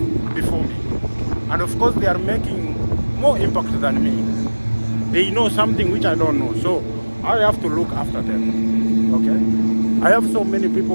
before me, and of course they are making more impact than me. They know something which I don't know, so I have to look after them. Okay, I have so many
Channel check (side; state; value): both; inverted; correlation -1.00